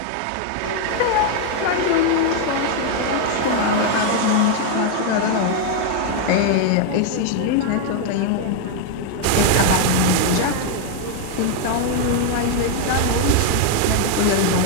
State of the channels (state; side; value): different; both; correlation 0.01